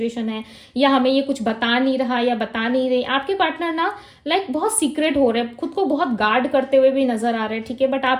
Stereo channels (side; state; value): both; identical; correlation 1.00